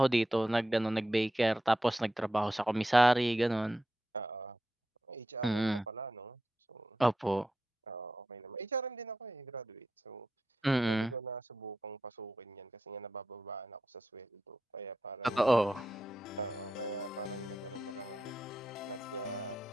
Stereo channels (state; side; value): normal; both; correlation 0.87